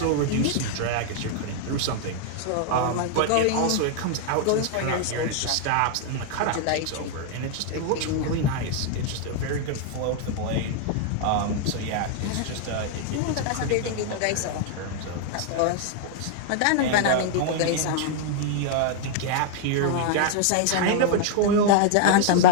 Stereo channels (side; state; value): both; different; correlation 0.00